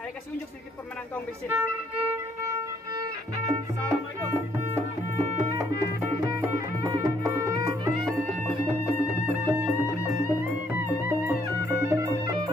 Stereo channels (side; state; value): both; normal; correlation 0.69